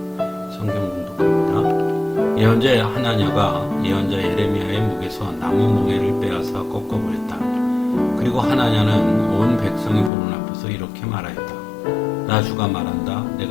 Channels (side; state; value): right; drops out; at 10.1 s